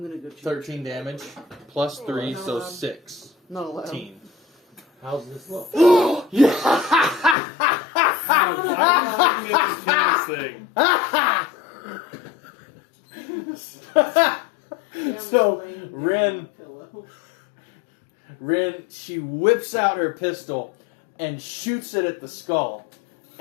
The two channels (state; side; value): drops out; right; at 7.4 s